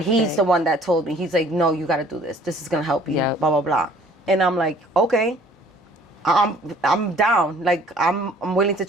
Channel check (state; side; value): normal; both; correlation 0.55